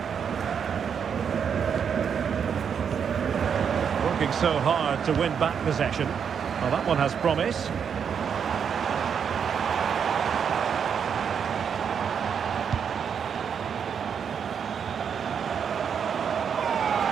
Working so hard to win back possession. Well, that one has promise.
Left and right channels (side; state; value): left; quieter; 7.3 dB